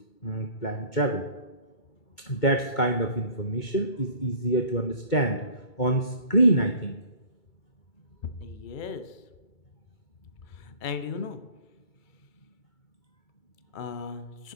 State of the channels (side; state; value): right; late; 2.3 ms